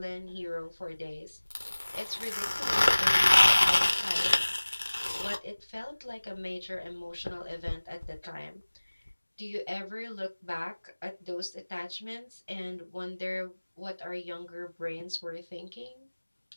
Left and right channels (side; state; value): both; inverted; correlation -1.00